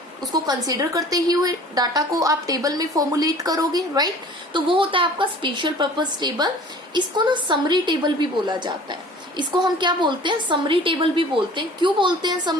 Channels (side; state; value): both; normal; correlation 0.47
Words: उसको कंसीडर करते ही हुए डाटा को आप टेबल में फॉर्मुलेट करोगे, राइट। तो वो होता है आपका स्पेशल पर्पस टेबल। इसको ना समरी टेबल भी बोला जाता है, इसको हम क्या बोलते हैं? समरी टेबल भी बोलते हैं। क्यों बोलते हैं